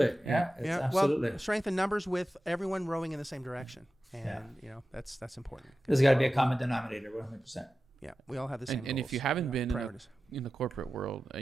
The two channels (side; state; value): both; normal; correlation 0.94